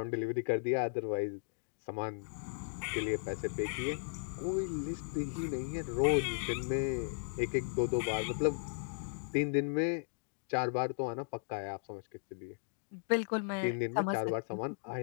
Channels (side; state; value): right; silent; digital silence